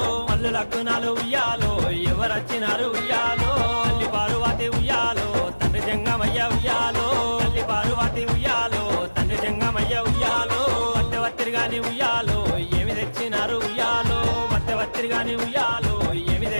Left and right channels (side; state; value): both; inverted; correlation -1.00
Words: మల్లు లగ్నాలు ఉయ్యాలో ఎవరచ్చినారు ఉయ్యాలో తల్లి పార్వతి ఉయ్యాలో తండ్రి జంగమయ్య ఉయ్యాలో తల్లి పార్వతి ఉయ్యాలో తండ్రి జంగమయ్య ఉయ్యాలో వత్తెవత్తిరిగాని ఉయ్యాలో ఏమి తెచ్చినారు ఉయ్యాలో వత్తెవత్తిరిగాని ఉయ్యాలో ఏమి